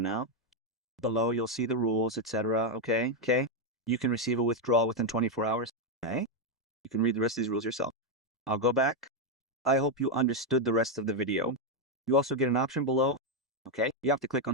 Below you'll see the rules, etc. Okay. You can receive a withdrawal within 24 hours. Okay. You can read the rest of these rules yourself. I'll go back. I hope you understood the rest of the video. You also get an option below. Okay. You have to click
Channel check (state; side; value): normal; both; correlation 0.03